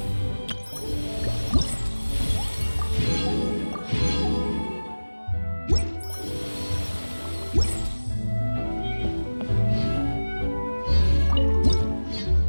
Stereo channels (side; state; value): both; inverted; correlation -1.00